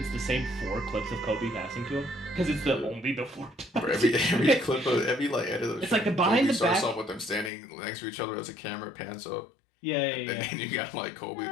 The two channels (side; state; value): right; drops out; at 7.5 s